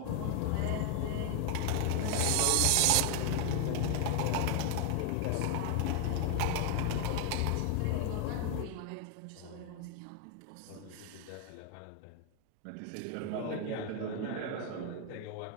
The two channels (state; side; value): different; both; correlation 0.00